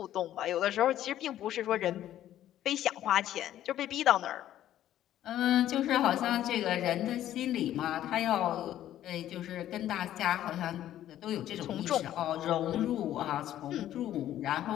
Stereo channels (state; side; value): quieter; right; 12.3 dB